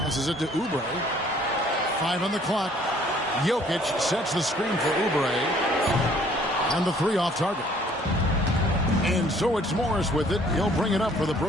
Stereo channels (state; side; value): normal; both; correlation 0.59